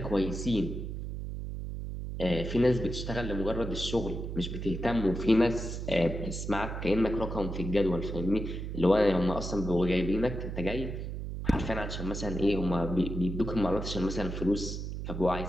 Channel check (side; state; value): right; noise; hum, 5 dB below the sound